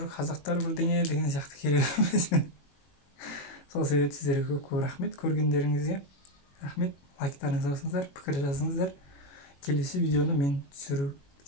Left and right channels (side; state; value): right; late; 21 ms